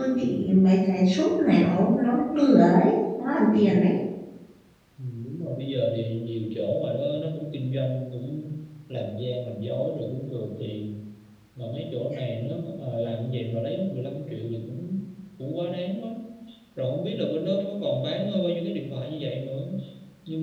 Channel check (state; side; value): identical; both; correlation 1.00